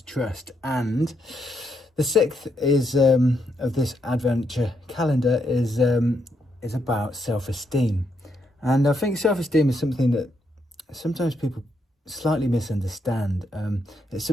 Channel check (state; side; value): normal; both; correlation 0.78